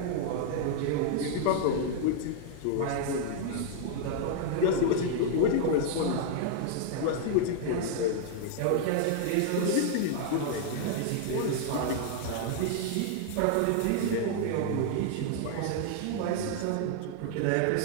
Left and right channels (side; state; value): both; different; correlation 0.00